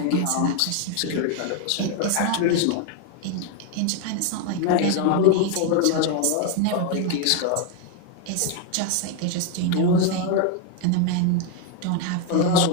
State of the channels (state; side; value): different; both; correlation 0.01